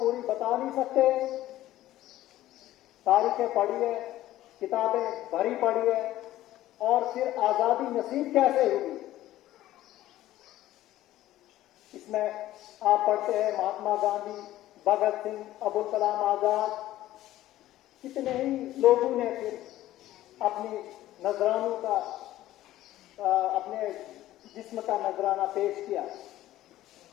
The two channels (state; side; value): quieter; right; 14.6 dB